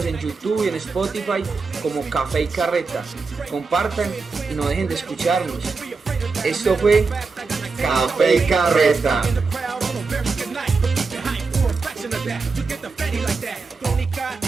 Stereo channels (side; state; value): left; quieter; 4.4 dB